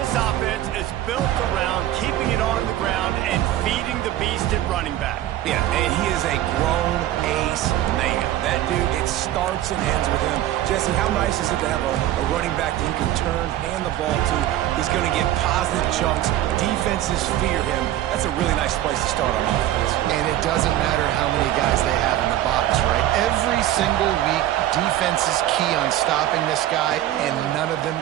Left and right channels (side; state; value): left; quieter; 13.4 dB